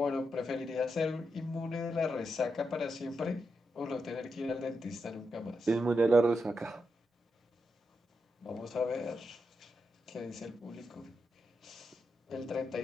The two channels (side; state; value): both; normal; correlation 0.85